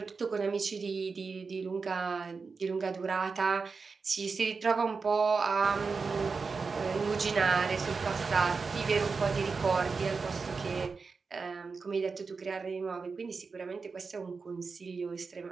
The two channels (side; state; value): left; quieter; 4.7 dB